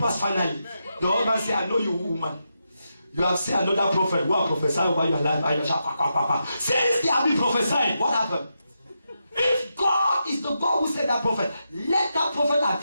finally? The husband said, I know you, woman. You have seen another prophet who have prophesied over your life. Since they have been prophesying, what happened? If God is the God who said that prophet, let that prophet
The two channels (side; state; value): both; inverted; correlation -0.86